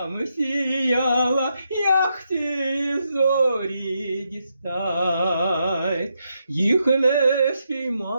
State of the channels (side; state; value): both; inverted; correlation -0.81